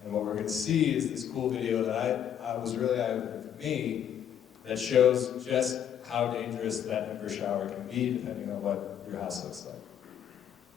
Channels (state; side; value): quieter; right; 9.5 dB